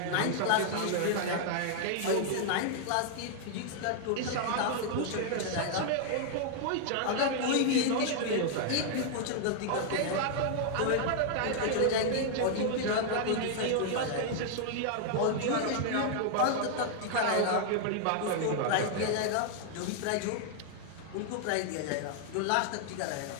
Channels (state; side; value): different; both; correlation -0.01